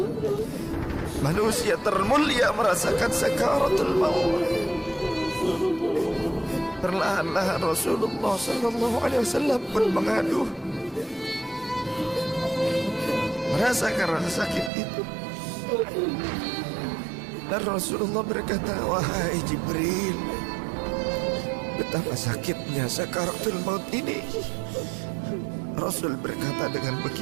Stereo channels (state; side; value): drops out; left; at 14.7 s